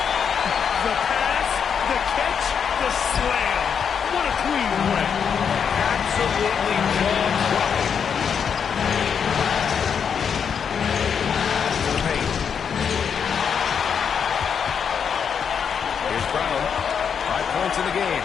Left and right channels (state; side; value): quieter; right; 7.1 dB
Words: The pass, the catch, the slam. What a clean win. Absolutely jaw-dropping. To the paint. Here's Brown. 5 points in the game.